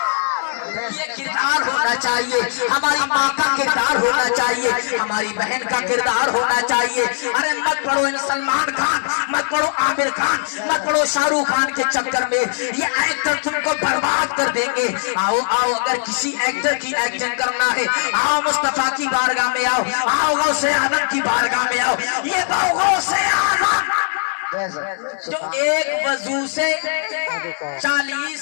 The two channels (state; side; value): silent; right; 66 dB below the other